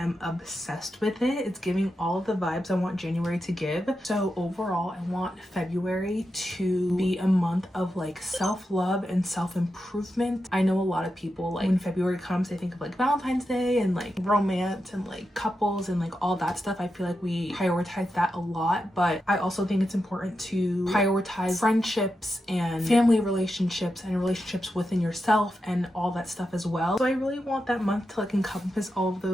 obsessed with it. It's giving all of the vibes I want January to give. So overall, I want February to be a month of like self-love and self-improvement. I know a lot of people, like when February comes, they think of like Valentine's Day and like romance and like couples and like all that stuff. I feel like we prioritize that a lot, but I also think it's important to prioritize friendships and family relationships and relationships within yourself and all that stuff as well. So I really want that month to like encompass all of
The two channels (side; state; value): both; normal; correlation 0.88